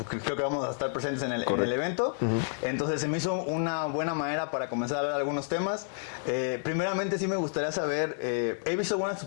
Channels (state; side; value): silent; right; digital silence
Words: creo que vamos a estar presentes en el evento, entonces se me hizo una buena manera para comenzar a hablar de algunos temas. Primeramente sí me gustaría saber, he visto algunas de tus